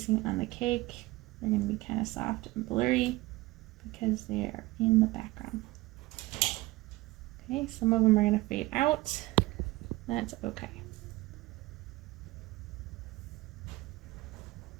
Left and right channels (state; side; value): quieter; left; 20.0 dB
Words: on the cake. They're going to be kind of soft and blurry because they are in the background. Okay, some of them are going to fade out. That's okay.